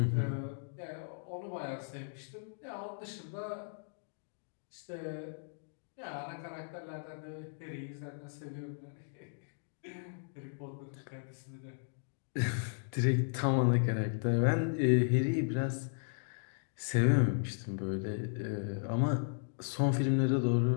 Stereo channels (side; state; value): right; silent; digital silence